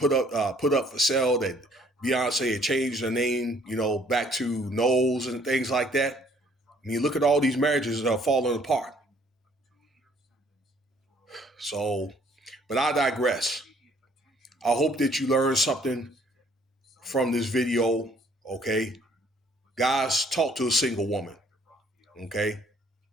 up for sale. That Beyonce had changed her name, back to Knowles and things like that. I mean, look at all these marriages that are falling apart. So, but I digress. I hope that you learned something from this video. Okay, guys, talk to a single woman. Okay.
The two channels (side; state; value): both; normal; correlation 0.61